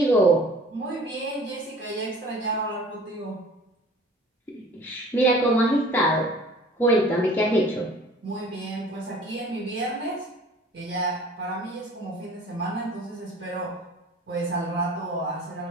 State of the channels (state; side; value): normal; both; correlation 0.47